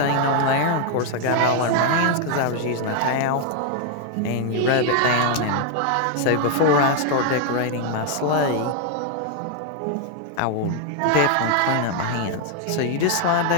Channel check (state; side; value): different; both; correlation 0.00